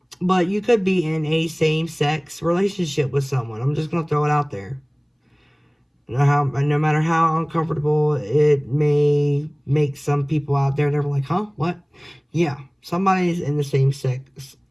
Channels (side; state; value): both; identical; correlation 1.00